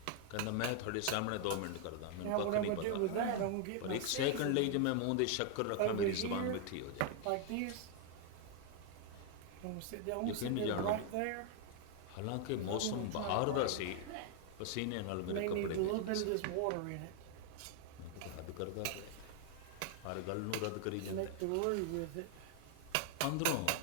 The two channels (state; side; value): different; both; correlation 0.00